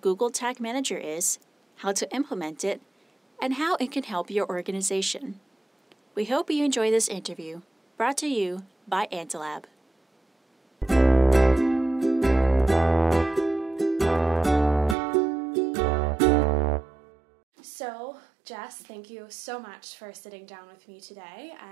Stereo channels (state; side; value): drops out; left; at 15.0 s